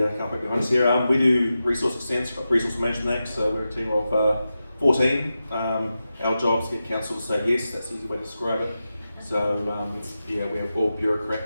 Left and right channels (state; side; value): inverted; both; correlation -0.91